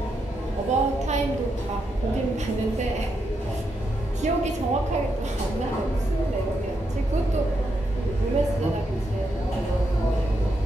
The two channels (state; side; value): normal; both; correlation 0.82